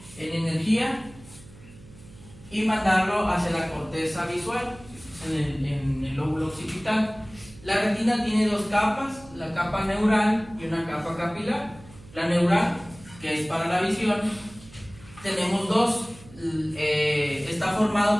en energía y mandarlo hacia la corteza visual, en el lóbulo occipital. La retina tiene dos capas, la capa neural y una capa capilar. La neural, que es para la visión, tenemos dos. Está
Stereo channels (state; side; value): noise; right; hum, 21 dB below the sound